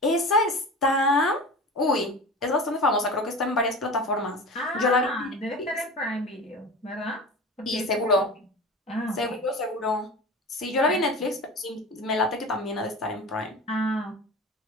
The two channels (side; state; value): both; normal; correlation 0.33